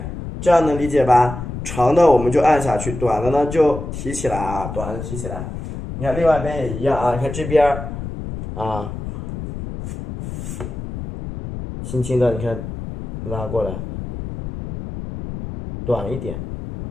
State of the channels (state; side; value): noise; left; rumble, 8 dB below the sound